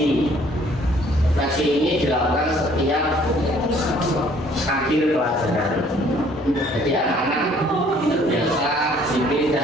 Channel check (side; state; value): both; normal; correlation 0.59